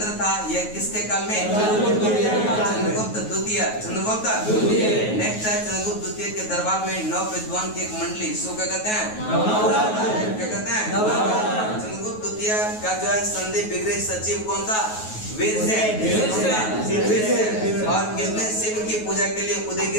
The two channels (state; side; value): late; right; 9.4 ms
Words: था। यह किसके काल में? चंद्रगुप्त द्वितीय। नेक्स्ट है चंद्रगुप्त द्वितीय के दरबार में 9 विद्वान की एक मंडली। इसको क्या कहते हैं? चंद्रगुप्त द्वितीय का जो है संधि विग्रह सचिव कौन था? वीरसेन। और किसने शिव की पूजा के लिए